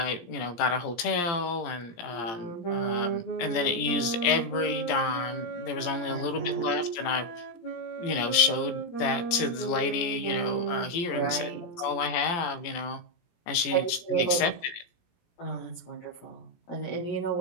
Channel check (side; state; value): right; late; 17 ms